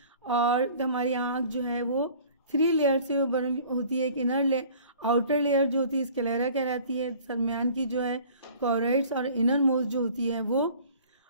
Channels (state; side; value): inverted; both; correlation -0.49